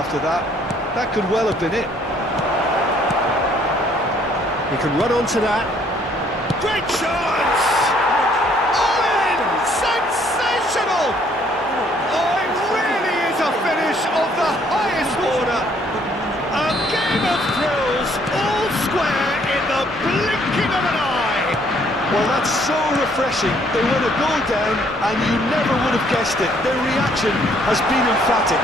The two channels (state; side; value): normal; both; correlation 0.64